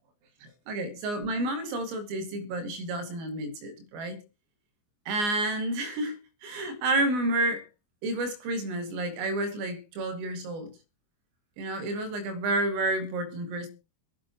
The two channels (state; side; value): late; left; 24 ms